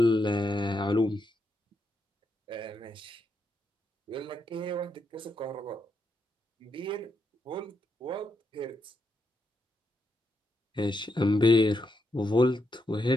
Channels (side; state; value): both; normal; correlation 0.82